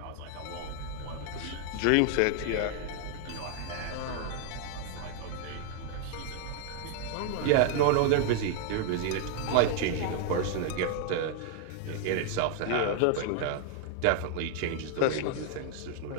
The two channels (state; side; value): different; both; correlation 0.00